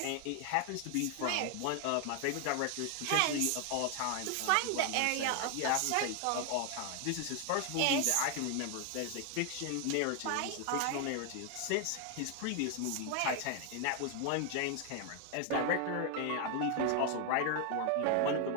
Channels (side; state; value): both; different; correlation 0.00